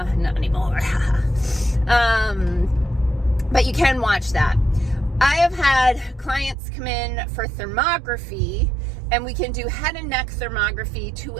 anymore. But you can watch that. I have had clients come in for thermography, and we can do head and neck thermography to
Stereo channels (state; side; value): drops out; left; at 6.6 s